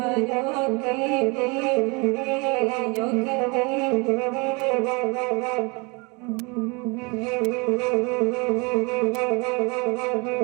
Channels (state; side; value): quieter; left; 29.1 dB